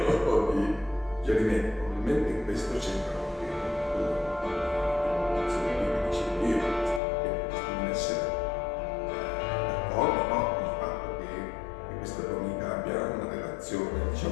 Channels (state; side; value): drops out; right; at 7.0 s